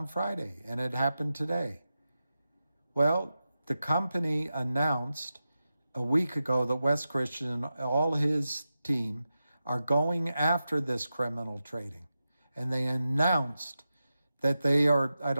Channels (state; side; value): inverted; both; correlation -0.91